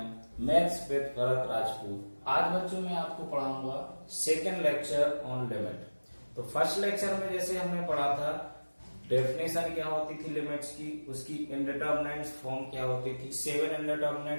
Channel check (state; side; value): inverted; both; correlation -1.00